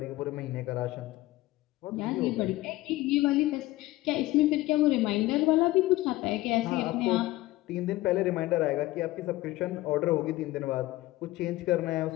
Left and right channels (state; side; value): quieter; right; 17.9 dB